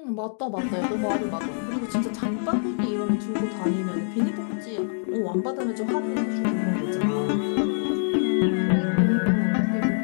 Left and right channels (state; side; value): silent; right; digital silence